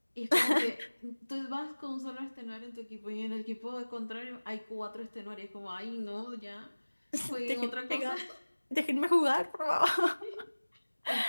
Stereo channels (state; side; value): inverted; both; correlation -1.00